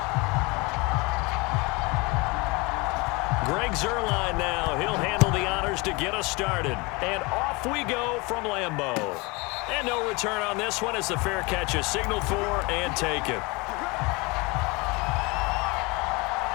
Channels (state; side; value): quieter; right; 26.2 dB